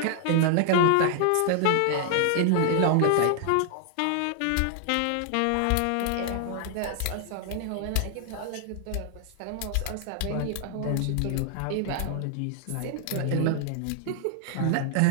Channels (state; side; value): different; both; correlation 0.00